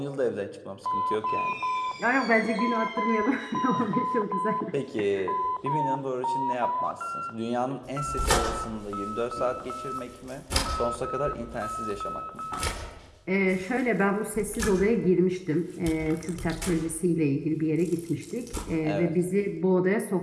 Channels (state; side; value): identical; both; correlation 1.00